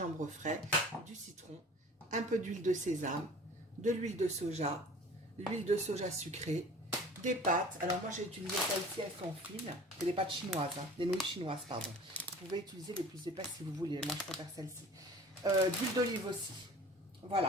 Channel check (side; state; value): both; normal; correlation 0.44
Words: frais, du citron, un peu d'huile de sésame, de l'huile de soja sucrée, des pâtes. Alors moi j'ai utilisé celles-ci, elles sont fines. C'est des pâtes chinoises, hein, des nouilles chinoises, pardon. Vous pouvez utiliser les plus épaisses si vous voulez. Moi je préfère celle-ci. D'huile d'olive aussi. Voilà,